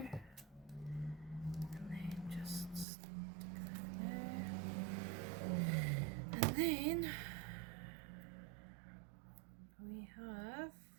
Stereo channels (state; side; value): drops out; left; at 2.9 s